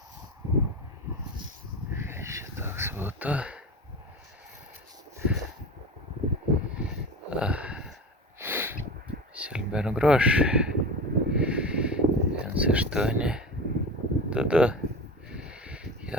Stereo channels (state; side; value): normal; both; correlation 0.28